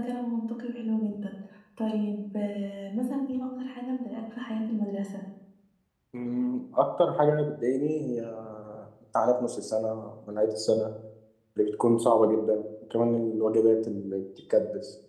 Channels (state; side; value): identical; both; correlation 1.00